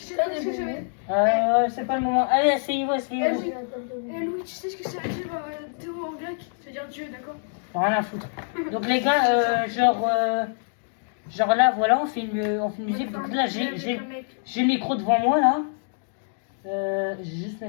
sais pas ce que ça veut dire? C'est pas le moment. Allez, asseyez-vous. Eh Louis, tu sais ce que ça veut dire Théo en grec? Ça veut dire Dieu, d'accord? Rien à foutre. Donc les gars, genre là, voilà, on fait une musique. Donc là, j'ai le micro devant moi, là. Je vais juste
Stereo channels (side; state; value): right; silent; digital silence